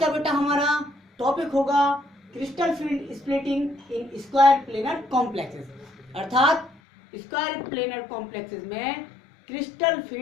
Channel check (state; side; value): drops out; right; at 6.8 s